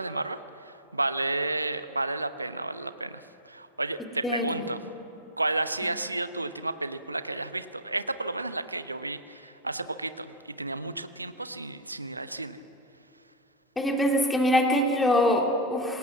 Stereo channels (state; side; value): normal; both; correlation -0.03